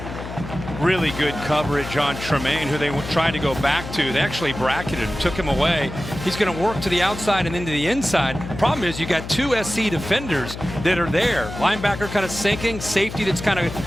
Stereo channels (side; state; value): left; noise; hum, 10 dB below the sound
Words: Really good coverage on Tremaine, who they tried to go back to. They actually bracketed him, took him away. He's going to work to the outside and into the inside. Problem is, you got 2 SC defenders that are there. Linebacker kind of sinking, safety that's kind of